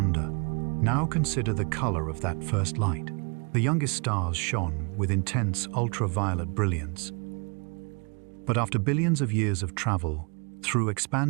Now consider the color of that first light. The youngest stars shone with intense ultraviolet brilliance. But after billions of years of travel through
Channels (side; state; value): left; quieter; 34.9 dB